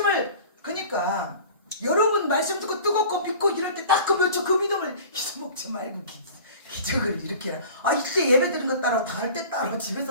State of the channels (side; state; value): both; inverted; correlation -0.42